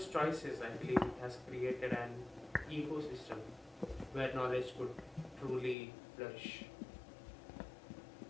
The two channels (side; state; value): right; drops out; at 5.8 s